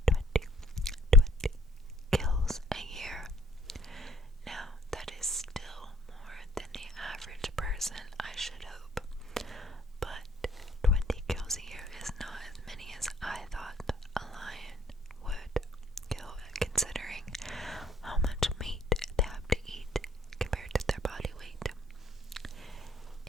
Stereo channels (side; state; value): both; normal; correlation 0.61